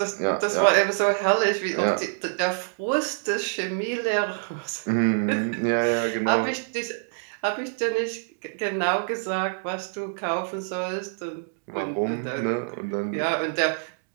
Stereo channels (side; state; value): left; silent; digital silence